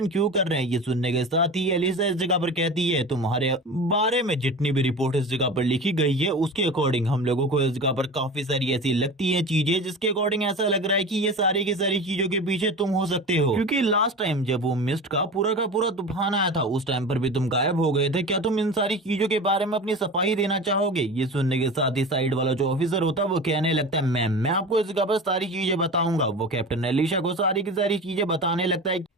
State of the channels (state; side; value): normal; both; correlation 0.32